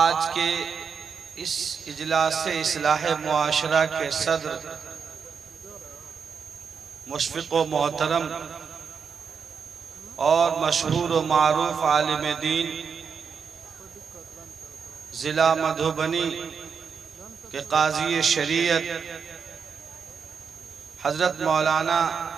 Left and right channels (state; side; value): quieter; left; 6.2 dB